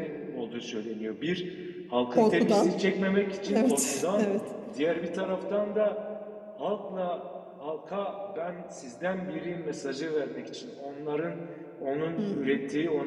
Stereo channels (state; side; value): identical; both; correlation 1.00